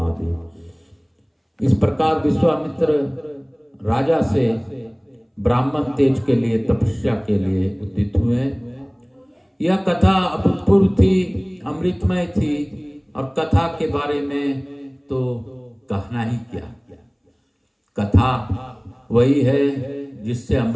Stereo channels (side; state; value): both; identical; correlation 1.00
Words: इस प्रकार विश्वामित्र राजा से ब्राह्मण तेज के लिए तपस्या के लिए उद्यत हुए। यह कथा अभूतपूर्व थी, अमृतमय थी और कथा के बारे में तो कहना ही क्या। कथा वही है जिससे